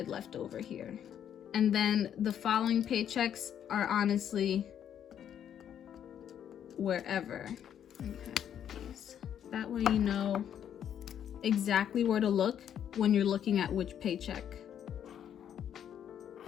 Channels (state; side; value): quieter; right; 9.5 dB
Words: left over here. And then the following paychecks are honestly wherever. That way you know exactly where to look when you're looking at which paycheck.